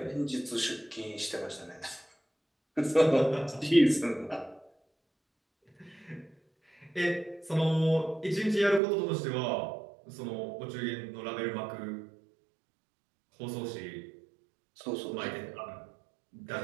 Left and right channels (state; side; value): drops out; left; at 8.8 s